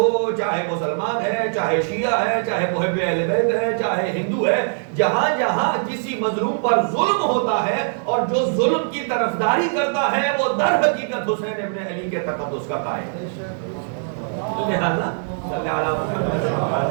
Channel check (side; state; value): left; silent; digital silence